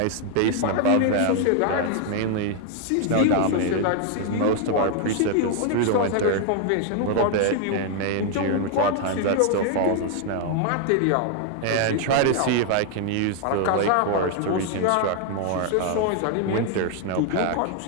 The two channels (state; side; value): different; both; correlation 0.00